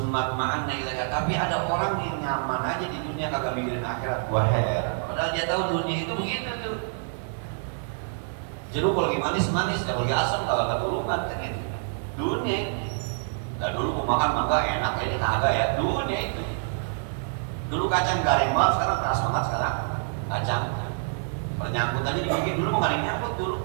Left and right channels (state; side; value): silent; left; 60 dB below the other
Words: ma'anna ilaika. Tapi ada orang yang nyaman aja di dunia kagak mikirin akhirat. Gua heran. Padahal dia tahu dunia itu begitu tuh. Jeruk kalau lagi manis-manis, kalau lagi asam kalau nggak turunkan kan gitu. Dunia itu. Nah dulu gua makan mangga enak, ini kagak ya. Dunia itu. Dulu kacang garing banget, sekarang keras banget sekarang. Kacang. Pernyangkut aja dibikin dulu mau nggak ada yang nyangkut dulu.